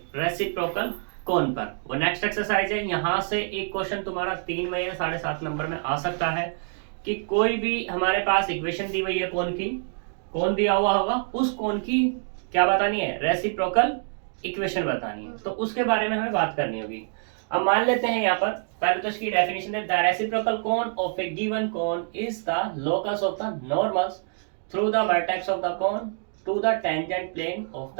रेसिप्रोकल कौन पर। वो नेक्स्ट एक्सरसाइज है। यहाँ से एक क्वेश्चन तुम्हारा 3 में या 7.5 नंबर में आ सकता है कि कोई भी हमारे पास इक्वेशन दी हुई है कौन की, कौन दिया हुआ होगा, उस कौन की क्या बतानी है, रेसिप्रोकल इक्वेशन बतानी है। तो उसके बारे में हमें बात करनी होगी। अब मान लेते हैं यहाँ पर पहले तो इसकी डेफिनेशन है, the reciprocal cone of a given cone is the locus of the normals through the vertex of the cone to the tangent plane of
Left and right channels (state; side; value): silent; left; 61 dB below the other